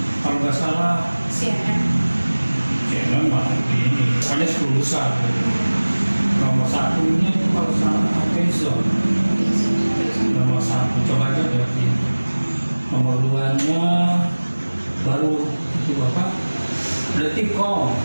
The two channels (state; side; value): inverted; both; correlation -1.00